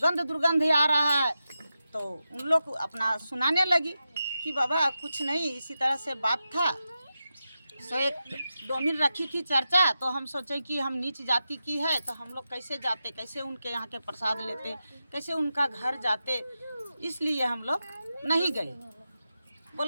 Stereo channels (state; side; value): inverted; both; correlation -0.90